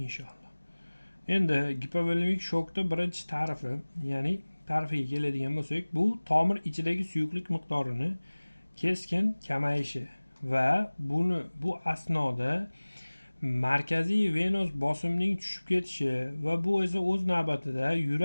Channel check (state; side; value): inverted; both; correlation -1.00